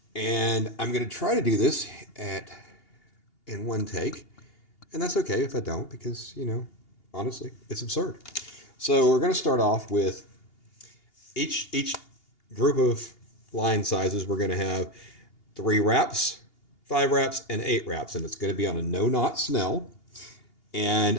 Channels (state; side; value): late; right; 2.8 ms